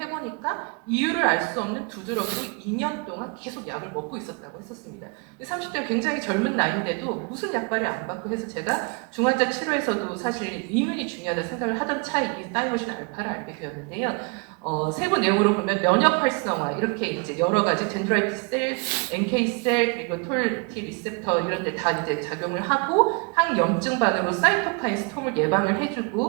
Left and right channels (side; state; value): left; quieter; 31.8 dB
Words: 이유를 알 수 없는 두드러기로 2년 동안 계속 약을 먹고 있었다고 했었습니다. 30대는 굉장히 젊은 나이인데도 무슨 약발이 안 받고 해서 제가 중환자 치료에서도 사실 이문이 중요하다 생각을 하던 차에 이 타이머신 알파를 알게 되었는데요. 세부 내용으로 보면 면역 활성화 이렇게 이제 여러 가지 덴드라이트 셀, NK 셀 그리고 톨T 리셉터 이런 데 다 이제 작용을 하고 항염증반으로 사이토카인 스톰을 예방을